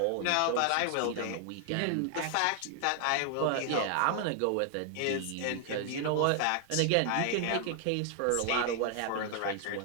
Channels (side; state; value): both; different; correlation 0.00